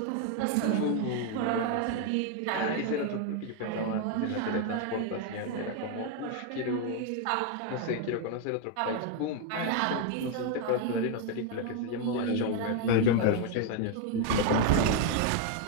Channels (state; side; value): different; both; correlation 0.01